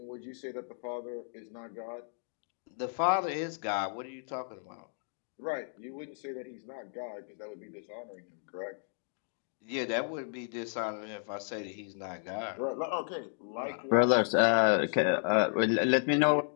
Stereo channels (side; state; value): right; silent; digital silence